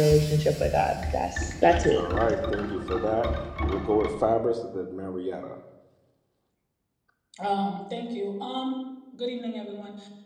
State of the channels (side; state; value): both; identical; correlation 1.00